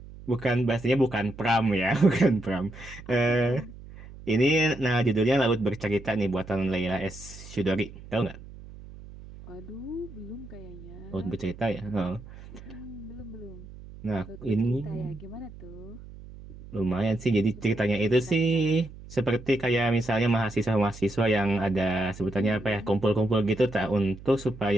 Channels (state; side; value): noise; right; hum, 16 dB below the sound